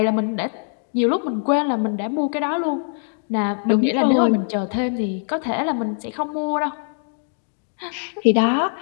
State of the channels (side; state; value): right; silent; 64 dB below the other